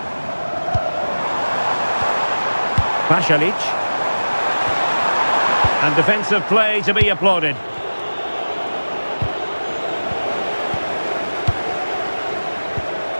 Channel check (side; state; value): both; inverted; correlation -1.00